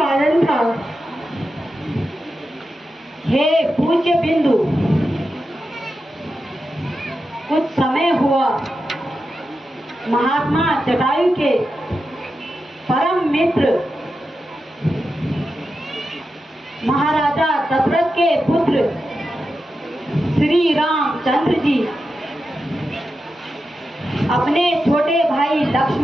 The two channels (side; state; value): both; normal; correlation 0.89